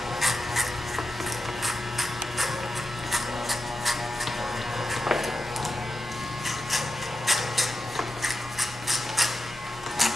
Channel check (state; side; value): normal; both; correlation 0.90